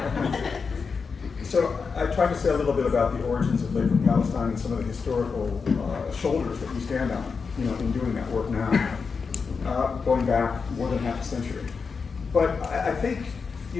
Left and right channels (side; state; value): right; quieter; 5.2 dB